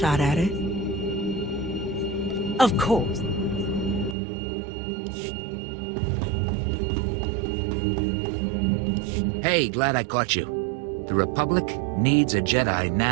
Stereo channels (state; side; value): drops out; left; at 4.2 s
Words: at it. Of course. Hey, glad I caught you. The Republic needs a Jedi